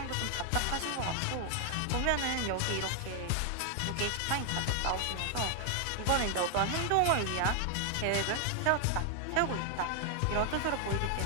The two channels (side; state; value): both; different; correlation 0.00